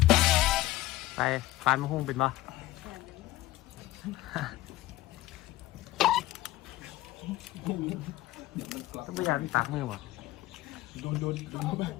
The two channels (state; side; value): quieter; right; 16.6 dB